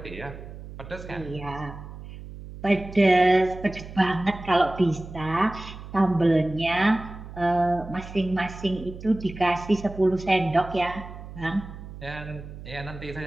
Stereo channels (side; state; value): right; noise; hum, 13 dB below the sound